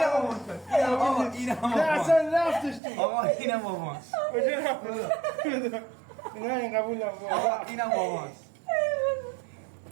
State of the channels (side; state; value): left; drops out; at 2.8 s